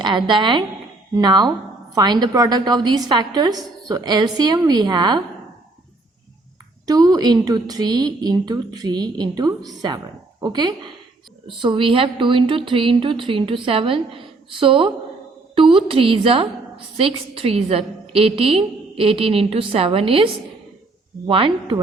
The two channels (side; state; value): left; quieter; 3.2 dB